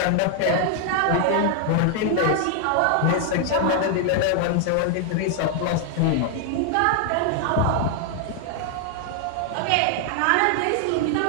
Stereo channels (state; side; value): different; both; correlation 0.00